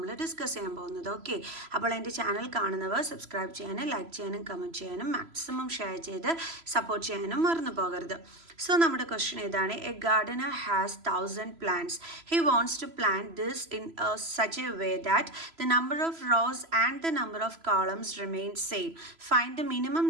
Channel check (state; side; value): late; left; 3.0 ms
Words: ഡിസ്കസ് ചെയ്യാൻ പോകുന്നത്. ഓക്കെ, അപ്പോൾ എൻ്റെ ചാനൽ കാണുന്നവർ സബ്സ്ക്രൈബ് ചെയ്യാനും ലൈക്ക് ചെയ്യാനും കമൻറ്റ് ചെയ്യാനും മാക്സിമം ഷെയർ ചെയ്ത് സപ്പോർട്ട് ചെയ്യാനും മറന്നു പോകരുത്. സോ നമ്മുടെ ക്വസ്റ്റ്യൻ ഇതാണ്: A Gardner has 1000 plants. He wants to plant this in such a way that the number of rows and the number of columns remain same. Find the minimum